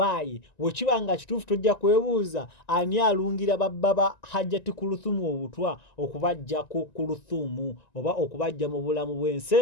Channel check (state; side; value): late; right; 1.9 ms